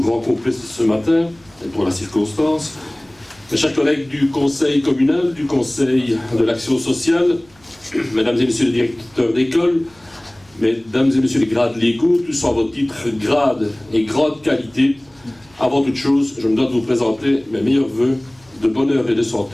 complet ce matin, et pour la circonstance, mes chers collègues du conseil communal, du conseil de l'action sociale, mesdames et messieurs les directeurs d'école, mesdames et messieurs les grades légaux, tous en vos titres, grades et grande qualité, avant toute chose, je me dois de vous présenter mes meilleurs vœux de bonheur et de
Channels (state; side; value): noise; right; hum, 30 dB below the sound